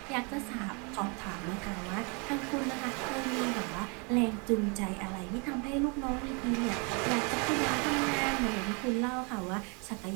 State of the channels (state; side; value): quieter; left; 33.6 dB